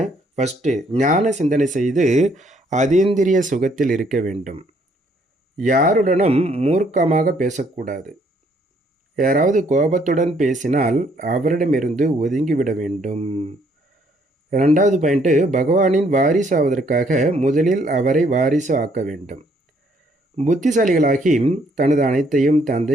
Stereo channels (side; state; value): both; normal; correlation 0.67